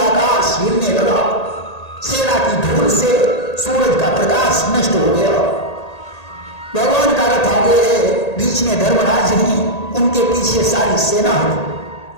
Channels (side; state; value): right; late; 1.8 ms